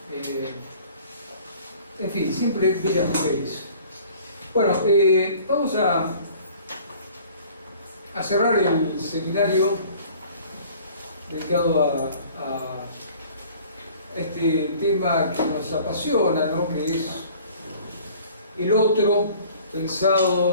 En fin, siempre bellas mujeres. Bueno, vamos a cerrar el seminario dedicado a este tema que nos apasiona, ¿no? Que es el otro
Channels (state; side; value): inverted; both; correlation -0.50